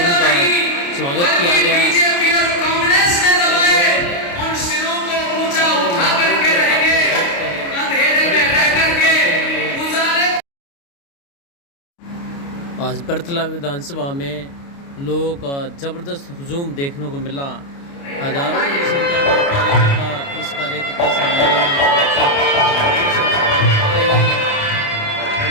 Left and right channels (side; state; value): right; late; 29 ms